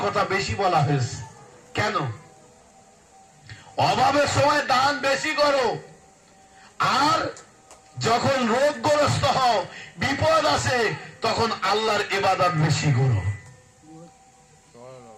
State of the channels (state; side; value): identical; both; correlation 1.00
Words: কথা বেশি বলা হয়েছে। কেন? অভাবের সময় দান বেশি করো, আর যখন রোগগ্রস্ত হও, বিপদ আসে, তখন আল্লাহর ইবাদত বেশি করো।